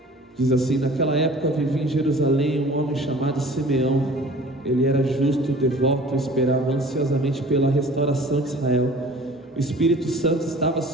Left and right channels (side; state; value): both; normal; correlation 0.46